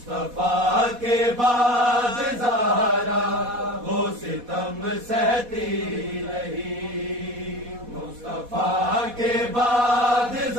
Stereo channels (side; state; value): left; late; 4.1 ms